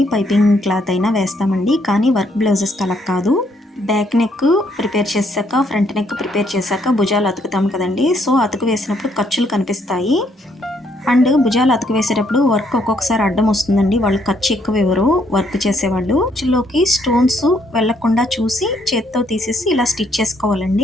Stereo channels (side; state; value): both; normal; correlation 0.71